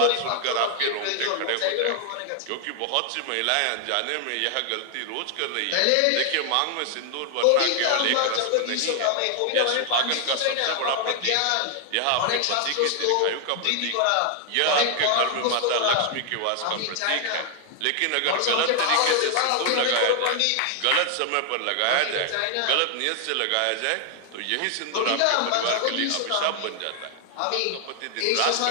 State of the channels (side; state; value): both; different; correlation 0.00